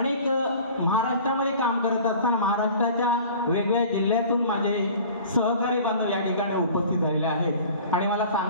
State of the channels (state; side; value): inverted; both; correlation -0.45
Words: महाराष्ट्रामध्ये काम करत असताना महाराष्ट्राच्या वेगवेगळ्या जिल्ह्यातून माझे सहकारी बांधव या ठिकाणी उपस्थित झालेले आहेत. आणि मला